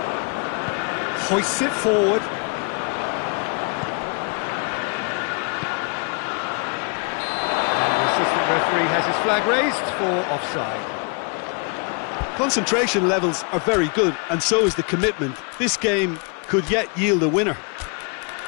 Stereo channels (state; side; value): quieter; right; 35.6 dB